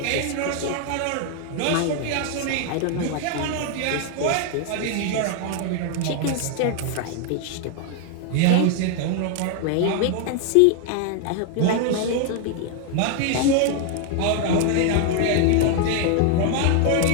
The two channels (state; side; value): different; both; correlation 0.00